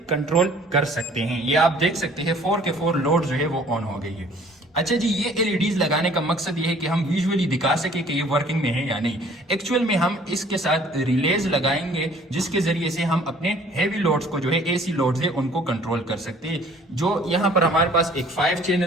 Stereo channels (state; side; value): normal; both; correlation 0.54